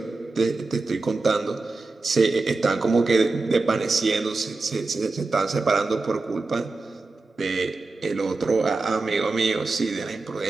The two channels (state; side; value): quieter; left; 3.6 dB